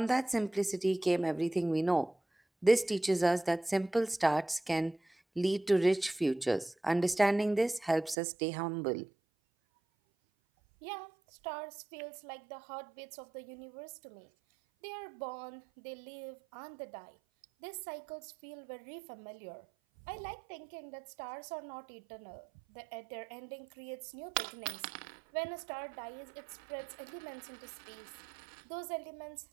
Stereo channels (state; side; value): drops out; left; at 8.2 s